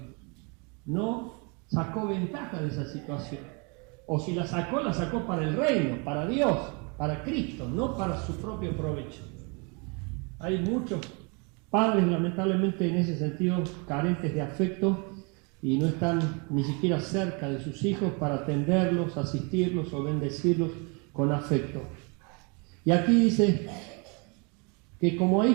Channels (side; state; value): left; quieter; 32.5 dB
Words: no sacó ventaja de esa situación, o si la sacó para el reino, para Dios, para Cristo, no para su propio provecho. Hay muchos padres lamentablemente en ese sentido carentes de afecto y no están ni siquiera cerca de sus hijos para atenderlos, asistirlos o bendecirlos con afecto. Y aquí dice que como a